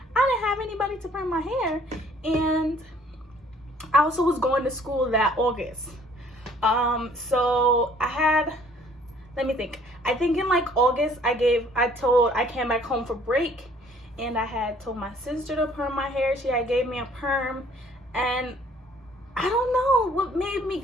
I didn't have anybody to perm my hair, and I also was going to school that August. So I had, let me think. I think in like August, I came back home for break, and I had told my sister to perm my hair. She had gave me a perm, and I don't know what made me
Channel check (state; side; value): normal; both; correlation 0.58